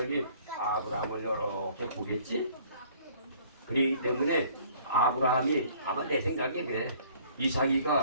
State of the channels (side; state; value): both; inverted; correlation -0.56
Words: 아브라함을 이렇게 보겠지? 그렇기 때문에 아브라함이 아마 내 생각에